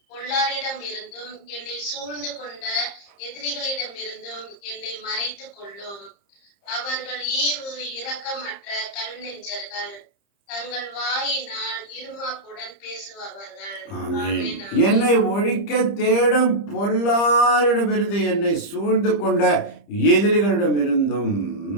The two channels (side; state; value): right; late; 30 ms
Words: பொல்லாரிடம் இருந்தும் என்னை சூழ்ந்து கொண்ட எதிரிகளிடமிருந்தும் என்னை மறைத்துக் கொள்ளும். அவர்கள் ஈவு இரக்கமற்ற கல் நெஞ்சர்கள், தங்கள் வாயினால் இருமாப்புடன் பேசுபவர்கள். ஆமென். என்னை ஒழிக்க தேடும் பொல்லாரிடமிருந்து என்னை சூழ்ந்து கொண்ட எதிரிகளிடமிருந்தும்